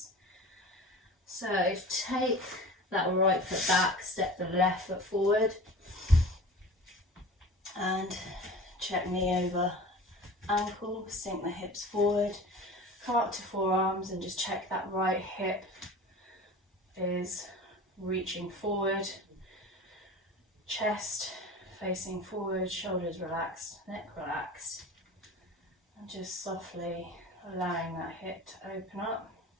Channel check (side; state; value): both; normal; correlation 0.37